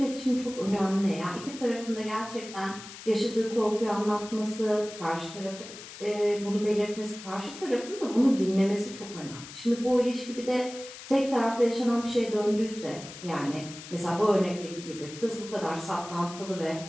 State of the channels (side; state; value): left; noise; hiss, 14 dB below the sound